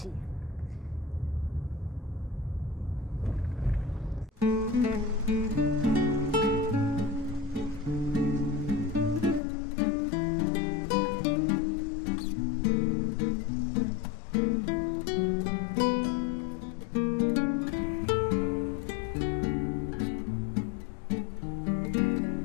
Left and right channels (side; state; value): right; drops out; at 9.4 s